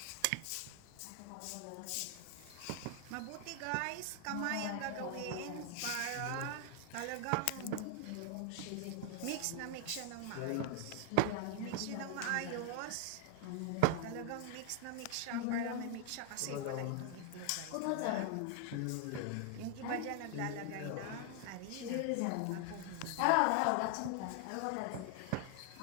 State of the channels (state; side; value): different; both; correlation 0.00